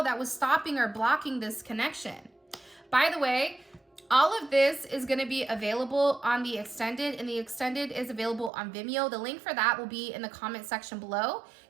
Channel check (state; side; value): drops out; left; at 8.5 s